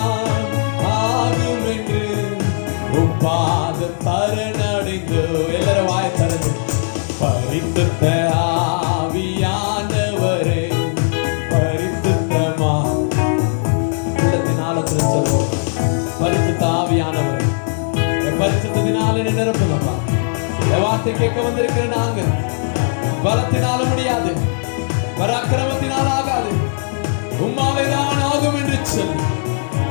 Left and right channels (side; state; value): right; silent; digital silence